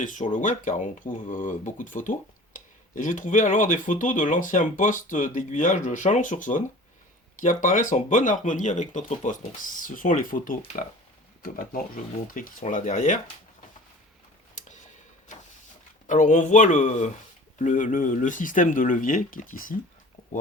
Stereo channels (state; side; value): normal; both; correlation 0.43